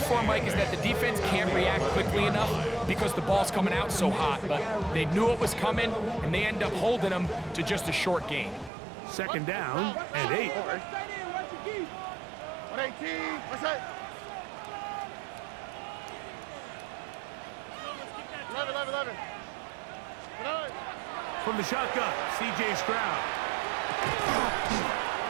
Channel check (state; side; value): drops out; left; at 8.7 s